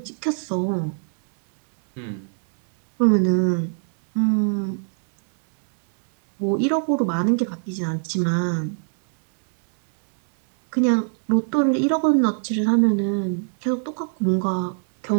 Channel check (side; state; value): left; silent; 64 dB below the other